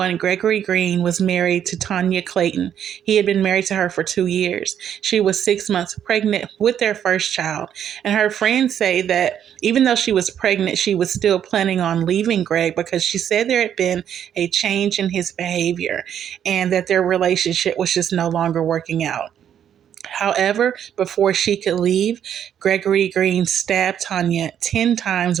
Gregory Green was married to Tanya Clayton. He had been married to her for 2 years. She was 6 months pregnant with their first child, and her friends say that even though she was pregnant, she was still planning on leaving Greg because she said there had been a change in his behavior and that their relationship was just no longer working out. However, before she could leave, Gregory Green stabbed Tanya 10 times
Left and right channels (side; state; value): left; quieter; 9.4 dB